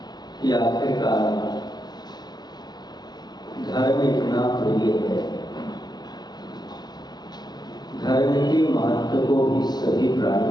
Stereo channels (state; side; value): late; right; 0.20 ms